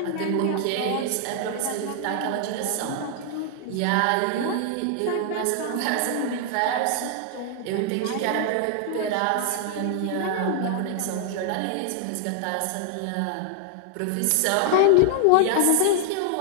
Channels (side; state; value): both; different; correlation 0.00